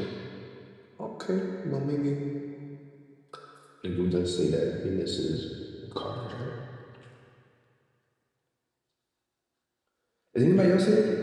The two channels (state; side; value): identical; both; correlation 1.00